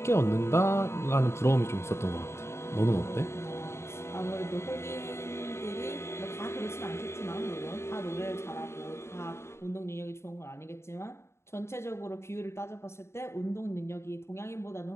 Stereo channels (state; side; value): late; right; 0.13 ms